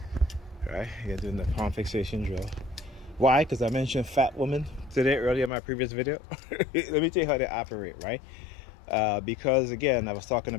Alright, you're doing the palm fixation drill. Why? Because I mentioned fat women today earlier in my previous video. Let me tell you how they operate, right? Because again, I was talking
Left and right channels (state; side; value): drops out; right; at 5.5 s